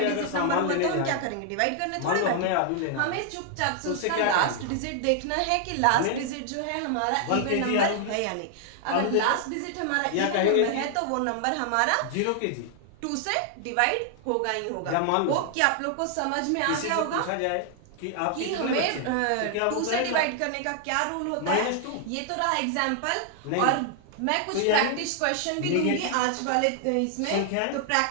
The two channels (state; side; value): different; both; correlation 0.00